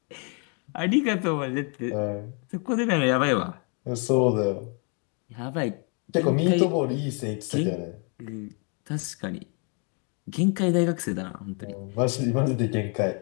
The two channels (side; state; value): right; quieter; 37.1 dB